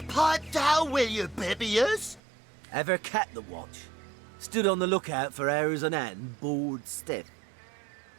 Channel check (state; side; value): drops out; left; at 2.2 s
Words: pipe down, will you, Bibius? Ever kept the watch? Stood on the lookout for hours on end, bored stiff.